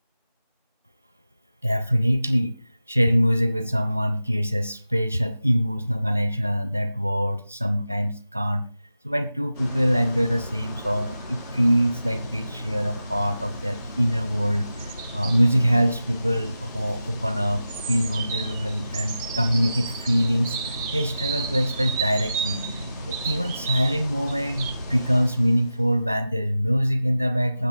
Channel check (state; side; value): inverted; both; correlation -0.93